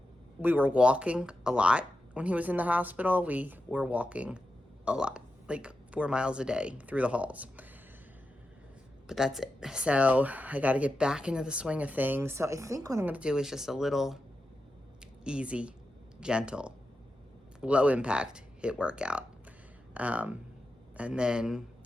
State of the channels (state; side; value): normal; both; correlation 0.90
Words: We were walking a lot when he was in the hospital. We were walking a lot, like 4 miles a day through the halls. But that's it. So I got to get back into the swing of things. So I think what I'm going to do is just a little easy, gentle, low impact HIIT workout. And then